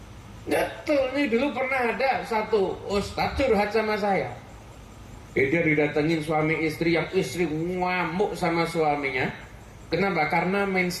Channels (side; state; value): both; identical; correlation 1.00